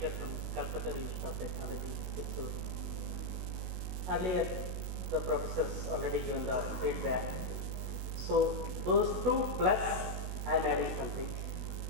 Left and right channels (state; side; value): late; left; 16 ms